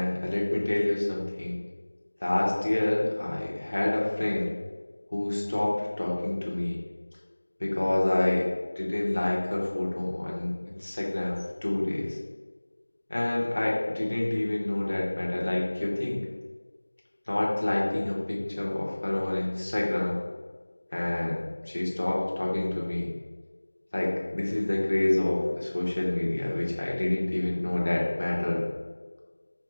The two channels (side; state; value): both; inverted; correlation -1.00